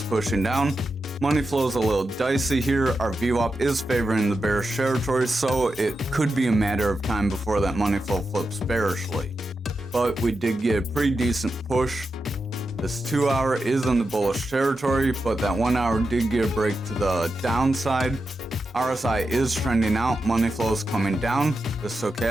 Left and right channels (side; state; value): both; normal; correlation 0.89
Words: pushing down. Money flow is a little dicey here. Our VWAP is favoring the bearish territory, so it could be a matter of time before that money flow flips bearishly. But we did get a pretty decent push. This 2-hour is in the bullish territory, but that 1-hour did get a break to the downside. RSI is trending out, money flow is coming down. The